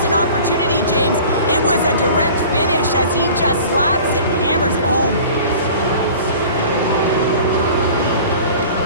an opportunity, James. It was a direct finish as he just slaps it and hammers it home.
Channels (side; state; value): both; inverted; correlation -0.43